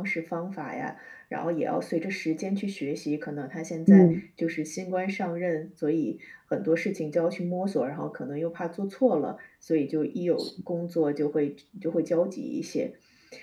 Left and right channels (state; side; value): identical; both; correlation 1.00